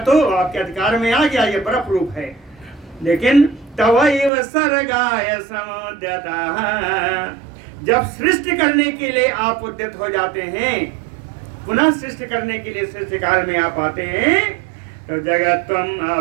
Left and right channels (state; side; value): drops out; left; at 4.3 s